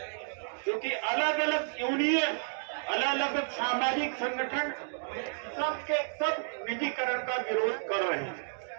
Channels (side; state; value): left; silent; digital silence